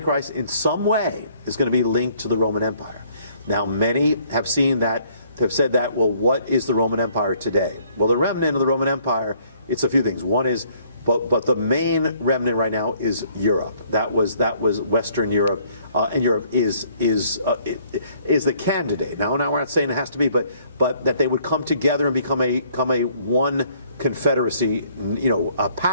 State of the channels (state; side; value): inverted; both; correlation -0.63